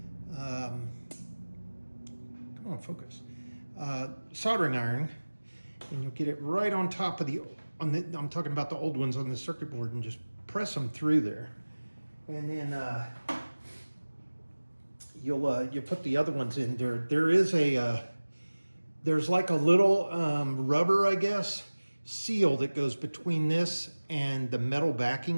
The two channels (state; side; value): inverted; both; correlation -1.00